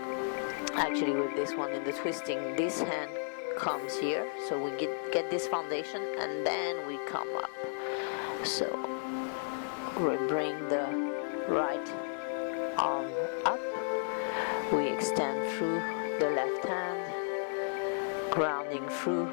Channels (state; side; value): silent; right; digital silence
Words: actually with this one in the twisting, this hand comes here, so we get this foundation, and then we come up. So we bring the right arm up, we extend through the left hand, grounding through